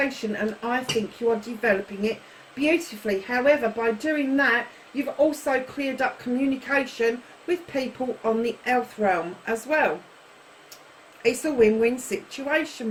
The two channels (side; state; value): both; identical; correlation 1.00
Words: and I think you are developing it beautifully. However, by doing that, you've also cleared up communication with people on the earth realm as well. It's a win-win situation,